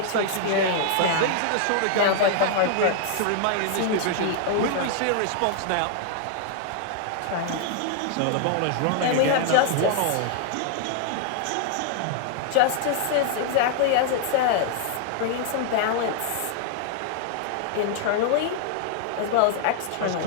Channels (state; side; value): different; both; correlation -0.01